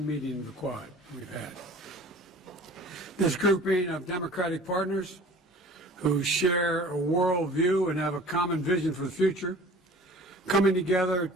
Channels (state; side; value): normal; both; correlation 0.45